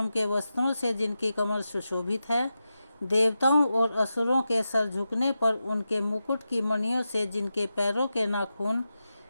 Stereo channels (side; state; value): both; inverted; correlation -0.90